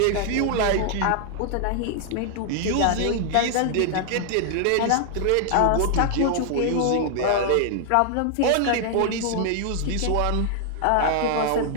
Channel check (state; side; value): different; both; correlation 0.00